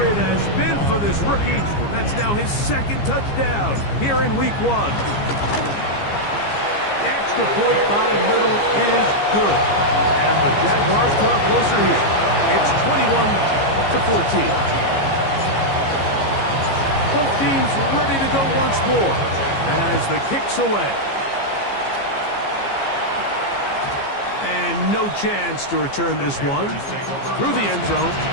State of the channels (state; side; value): late; right; 15 ms